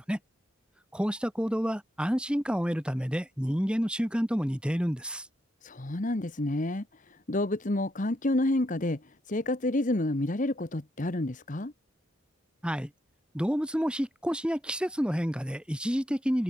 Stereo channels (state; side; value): normal; both; correlation 0.81